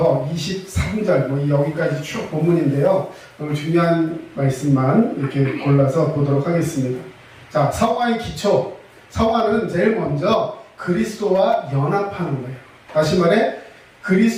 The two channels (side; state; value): both; identical; correlation 1.00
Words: 23절, 여기까지 쭉 본문인데요. 오늘 중요한 말씀만 이렇게 골라서 보도록 하겠습니다. 자, 성화의 기초. 성화는 제일 먼저 그리스도와 연합하는 거예요. 다시 말해,